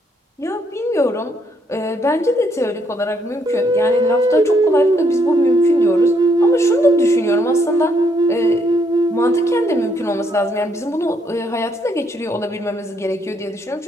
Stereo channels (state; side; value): normal; both; correlation 0.72